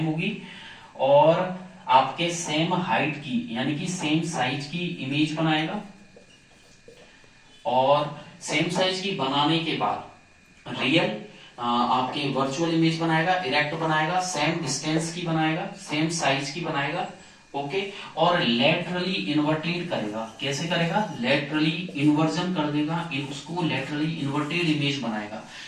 होगी और आपके सेम हाइट की यानी कि सेम साइज की इमेज बनाएगा। और सेम साइज की बनाने के बाद रियल आपके वर्चुअल इमेज बनाएगा, इरेक्ट बनाएगा, सेम डिस्टेंस की बनाएगा, सेम साइज की बनाएगा। ओके, और लेटरली इन्वर्टेड करेगा। कैसे करेगा, लेटरली इन्वर्जन कर देगा, उसको लेटरली इन्वर्टेड इमेज बनाएगा।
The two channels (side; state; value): both; identical; correlation 1.00